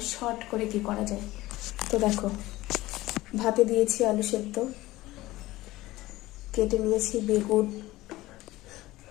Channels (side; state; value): right; quieter; 17.8 dB